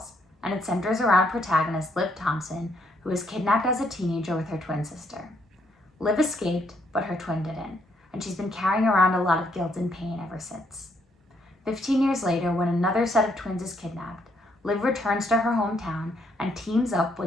and it centers around protagonist Liv Thompson, who was kidnapped as a teenager with her twin sister. Liv escaped, but her twin didn't, and she's been carrying around a lot of guilt and pain ever since. 15 years later, when another set of twins is kidnapped, Liv returns to her hometown and teams up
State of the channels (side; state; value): both; normal; correlation 0.72